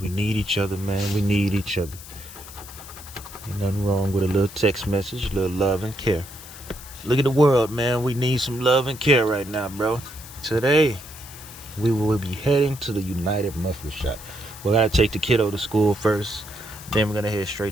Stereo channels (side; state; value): left; noise; hiss, 16 dB below the sound